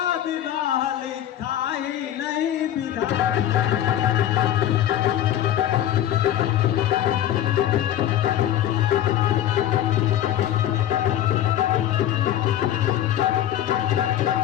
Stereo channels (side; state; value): right; quieter; 11.6 dB